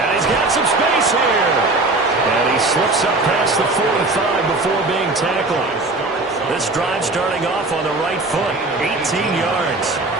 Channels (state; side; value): quieter; left; 3.1 dB